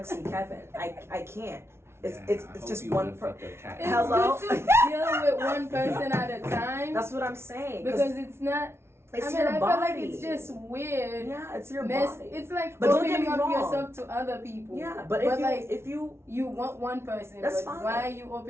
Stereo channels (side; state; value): left; late; 0.12 ms